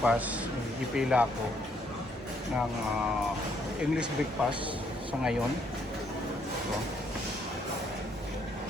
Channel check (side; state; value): both; normal; correlation 0.70